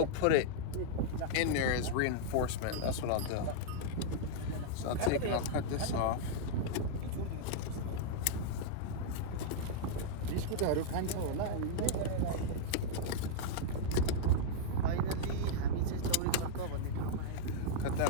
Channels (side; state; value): both; different; correlation -0.02